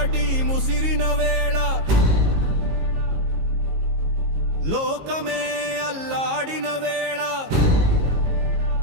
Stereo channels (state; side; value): late; left; 19 ms